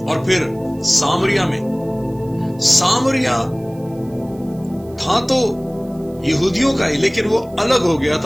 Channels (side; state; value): right; noise; hiss, 28 dB below the sound